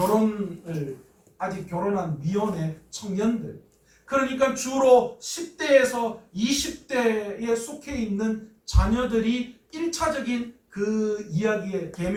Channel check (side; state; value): both; identical; correlation 1.00